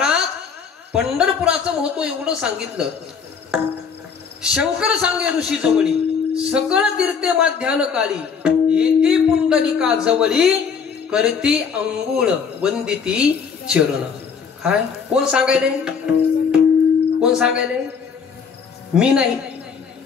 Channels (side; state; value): right; quieter; 6.2 dB